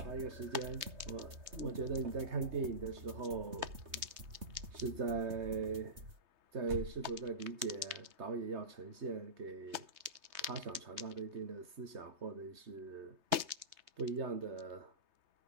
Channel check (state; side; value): late; left; 3.2 ms